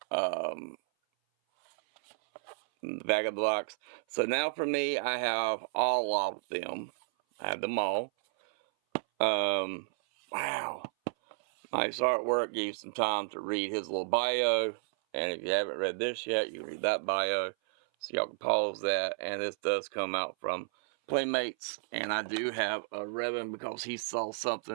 Bag of blocks. So now for me, I have all of them. I have them all. Wow. Nice artwork. Gave you some time to read his little bio. And if you haven't read this yet, you can read that bio. So y'all can pause that. And this does come out from Playmates. And I do have a ribbon because he saw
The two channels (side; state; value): left; silent; 56 dB below the other